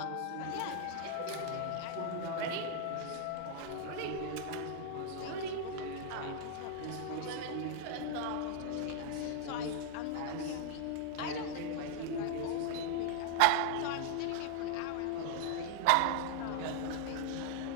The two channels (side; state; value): both; different; correlation 0.00